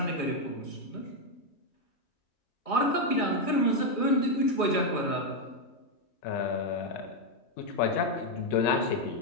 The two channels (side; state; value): right; late; 2.4 ms